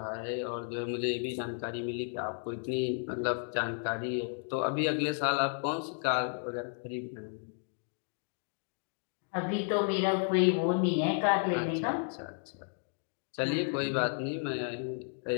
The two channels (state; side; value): silent; right; 56 dB below the other